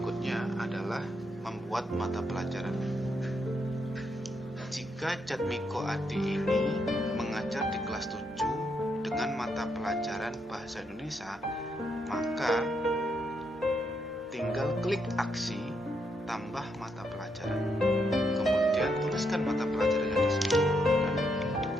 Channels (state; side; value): normal; both; correlation 0.78